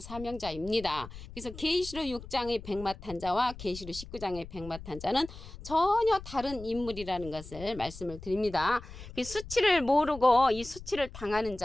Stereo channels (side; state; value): left; noise; rumble, 14 dB below the sound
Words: 사명자입니다. 그래서 계시록 6장의 백마탄자와 계시록 19장의 백마탄자는 전혀 다른 인물이라는 것을 말씀을 드립니다. 수치를 모르고 이 수치를 당하는